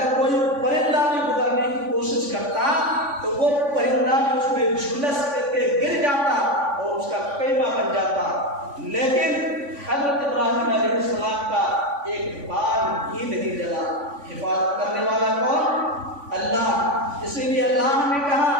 کوئی پرندہ بھی گزرنے کی کوشش کرتا تو وہ پرندہ بھی اس میں جھلس کر کے گر جاتا اور اس کا قیمہ بن جاتا۔ لیکن حضرت ابراہیم علیہ السلام کا ایک بال ہی نہیں جلا۔ حفاظت کرنے والا کون؟ اللہ۔ اسی لیے اللہ نے کہا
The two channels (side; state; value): left; late; 3.5 ms